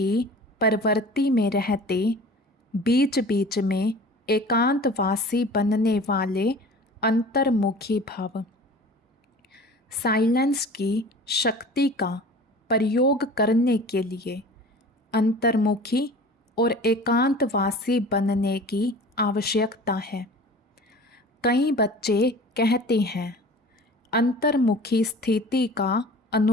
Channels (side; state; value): both; normal; correlation 0.41